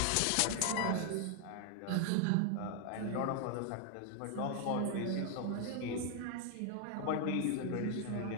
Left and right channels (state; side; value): different; both; correlation 0.00